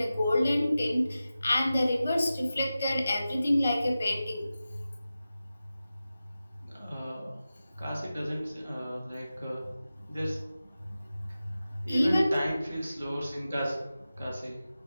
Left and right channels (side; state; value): both; inverted; correlation -0.94